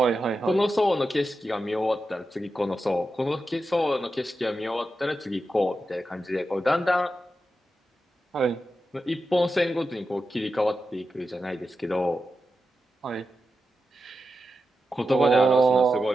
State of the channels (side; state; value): both; normal; correlation 0.89